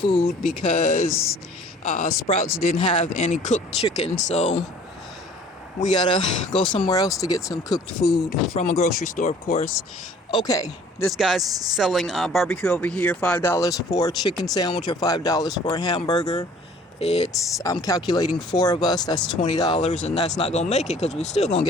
because Sprouts didn't have any cooked chicken. So we gotta go somewhere else to get some cooked food from a grocery store, of course. Okay, this guy's selling barbecue over here, $5 for a chicken sandwich or $5 for a hamburger. I'm calculating four of us, that's $20, and that's not gonna make it because we're still gonna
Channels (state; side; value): normal; both; correlation 0.52